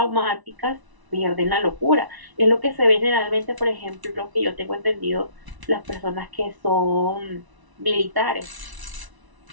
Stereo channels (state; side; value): late; left; 1.0 ms